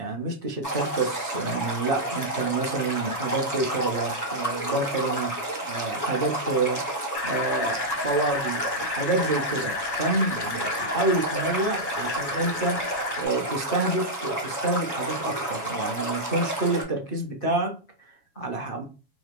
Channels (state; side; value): late; right; 7.2 ms